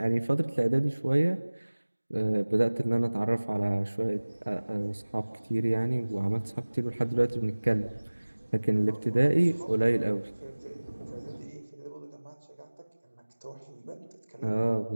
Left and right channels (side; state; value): both; inverted; correlation -1.00